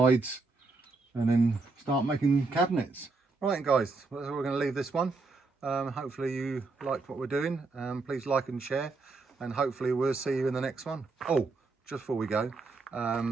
and then start making cabinets. Right guys, we're going to leave this one. Hopefully you liked what we're doing. Please like and share, and hopefully we'll see you in the next one. Oh, just before we go,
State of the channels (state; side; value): quieter; left; 3.8 dB